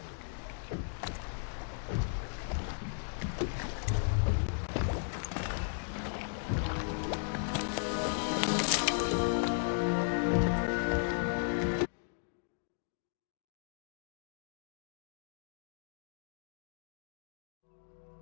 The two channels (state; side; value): silent; right; digital silence